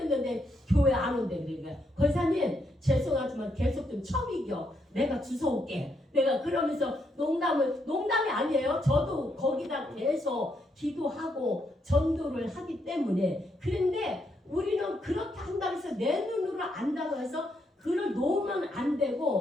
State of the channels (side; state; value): both; normal; correlation 0.78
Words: 교회 안 온대. 그러니까 권사님 죄송하지만 계속 좀 처이겨. 내가 주워올게. 내가 그러면서 농담이 아니에요. 저도 거기다 계속 기도하고 전도를 하기 때문에. 그런데 우리는 그렇게 한다고 해서 내 눈으로 안다고 해서 그를 놓으면 안